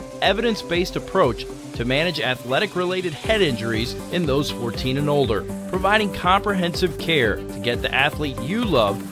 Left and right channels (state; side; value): identical; both; correlation 1.00